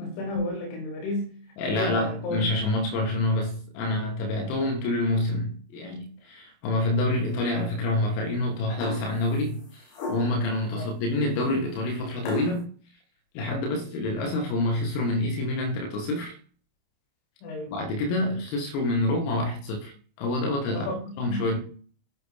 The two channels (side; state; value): right; late; 29 ms